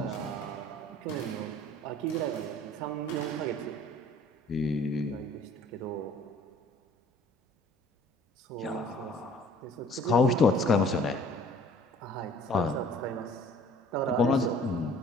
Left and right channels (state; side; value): normal; both; correlation 0.52